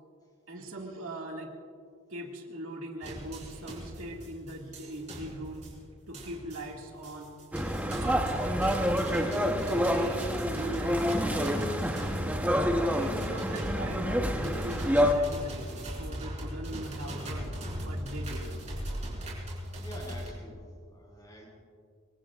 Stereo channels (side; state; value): both; normal; correlation 0.73